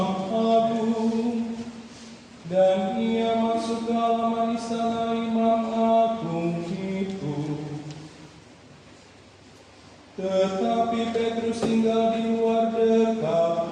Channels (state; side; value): identical; both; correlation 1.00